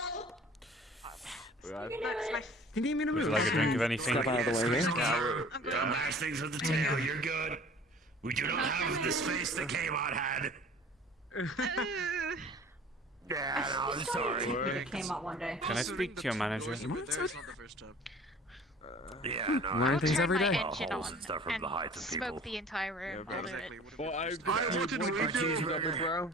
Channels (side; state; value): both; normal; correlation 0.46